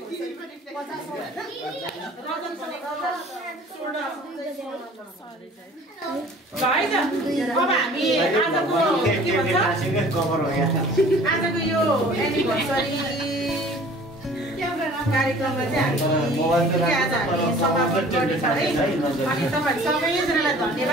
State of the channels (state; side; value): normal; both; correlation 0.49